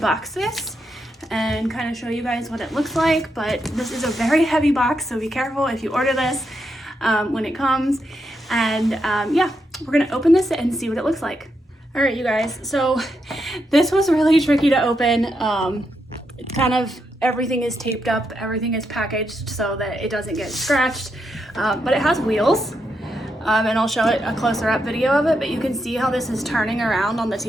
this and kind of show you guys what it looks like, but this is a very heavy box, so be careful if you order this when it comes. And yeah, we're gonna open this and see what it looks like. All right, you guys, so this was really tricky to open. Kind of everything is taped up, everything is packaged so that it doesn't get scratched, but it has wheels, and I'll show it a closer up video of it, but you can see how this is turning around on the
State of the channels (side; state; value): both; normal; correlation 0.82